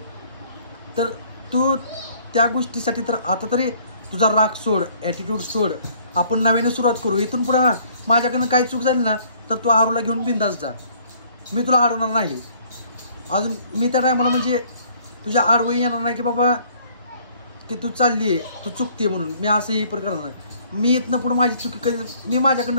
तर तू त्या गोष्टीसाठी तर आता तरी तुझा राग सोड, ॲटिट्यूड सोड. आपण नव्याने सुरुवात करू. इथून पुढे माझ्याकडनं काही चूक झाली ना तर तू आरूला घेऊन बिंदास जा. मी तुला अडवणार नाही. अजून मी त्या टायमाला म्हणजे तुझ्या आडवही येणार नाही की बाबा की तू चालली आहे, तू चुकते म्हणून. मी असंही पण करणार नाही. मी इथनं पुढे माझी चुकी कधी, मी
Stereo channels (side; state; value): both; inverted; correlation -0.59